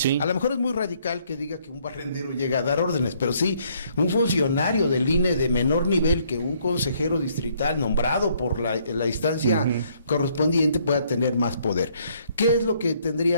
A lo mejor es muy radical que diga que un barrendero llega a dar órdenes, pero sí, un funcionario del INE de menor nivel que un consejero distrital nombrado por la instancia correspondiente pueda tener más poder. ¿Qué es lo que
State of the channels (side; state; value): both; inverted; correlation -0.67